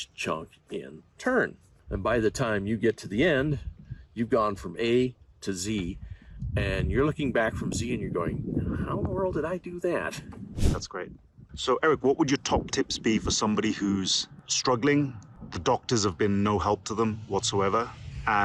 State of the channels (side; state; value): both; identical; correlation 1.00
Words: chunk in turn. And by the time you get to the end, you've gone from A to Z, and you're looking back from Z and you're going, how in the world did I do that? That's great. So, Eric, what would your top tips be for somebody who's struggling? The doctors have been no help to them whatsoever,